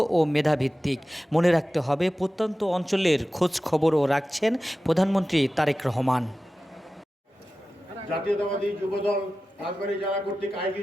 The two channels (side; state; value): both; normal; correlation 0.95